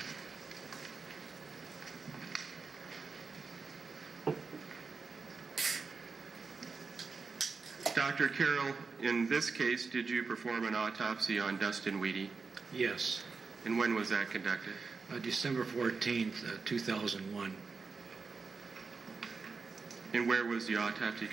Dr. Carroll, in this case, did you perform an autopsy on Dustin Weedy? Yes. And when was that conducted? December 14th, 2001. And where was the autopsy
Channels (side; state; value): left; quieter; 4.6 dB